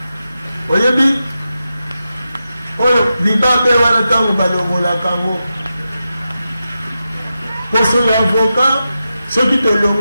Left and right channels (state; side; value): inverted; both; correlation -0.90